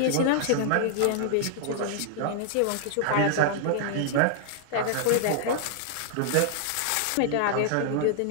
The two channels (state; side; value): different; both; correlation -0.01